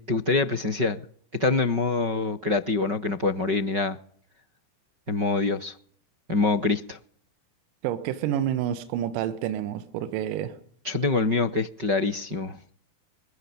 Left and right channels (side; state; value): left; late; 5.3 ms